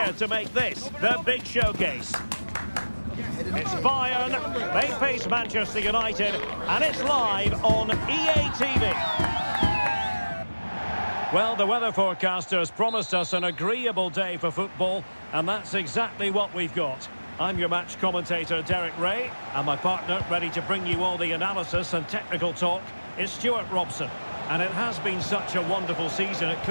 to make this their big showcase. It's Bayern, they face Manchester United, and it's live on EA TV. Well, the weather forecasters promised us an agreeable day for football, and that's exactly what we've got. I'm your match commentator, Derek Ray, and my partner, ready to bring you all the analysis and technical talk, is Stuart Robson. And it has been such a wonderful season, it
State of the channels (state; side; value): inverted; both; correlation -1.00